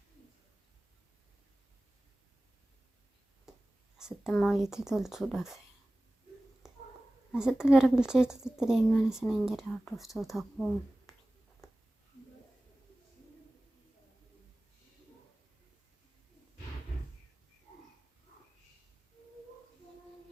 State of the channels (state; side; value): normal; both; correlation 0.97